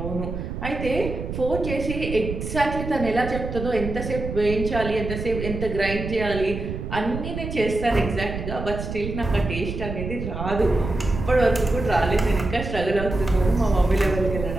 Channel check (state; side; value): noise; right; rumble, 6 dB below the sound